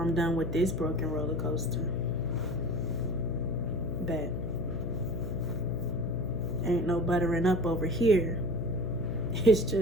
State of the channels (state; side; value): noise; left; hum, 6 dB below the sound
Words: done with this broken roller coaster. Bet. Ain't no buttering up over here. It's